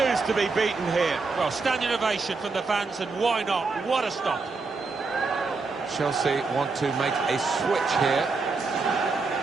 to be beaten here. Well, standing ovation from the fans, and why not? What a stop. Chelsea want to make a switch here.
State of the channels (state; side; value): quieter; left; 4.2 dB